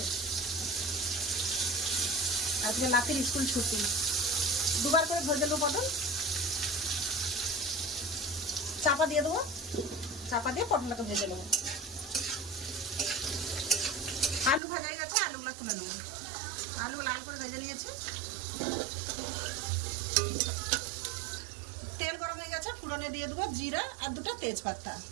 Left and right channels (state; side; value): drops out; left; at 14.6 s